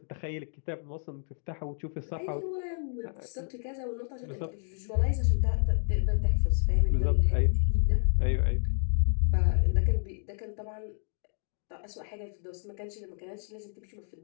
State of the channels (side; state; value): right; silent; digital silence